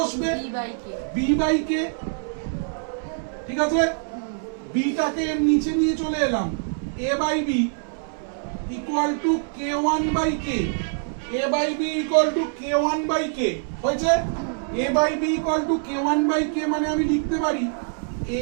b বাই k। ঠিক আছে, b টাকে নিচে নিয়ে চলে এলাম, a by b equal to k1 by k, a by b equal to k1 by k হয়েছে a by b equal to k1 by k মানে আমি লিখতে পারি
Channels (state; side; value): silent; left; 62 dB below the other